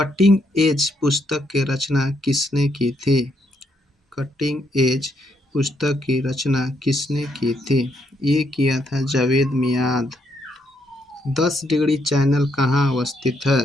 एज पुस्तक की रचना किसने की थी? कटिंग एज पुस्तक की रचना किसने की थी? ये किया था जावेद मियाद। 10 डिग्री चैनल कहाँ अवस्थित है?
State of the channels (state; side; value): normal; both; correlation 0.75